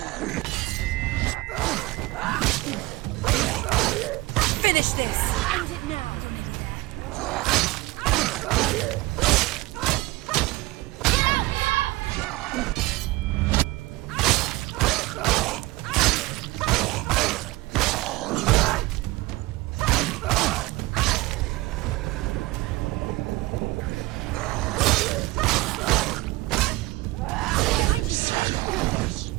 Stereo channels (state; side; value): quieter; left; 20.2 dB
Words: Finish this! End it now! Behind you!